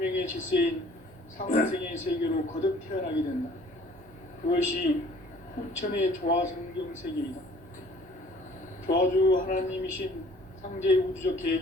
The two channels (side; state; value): both; normal; correlation 0.54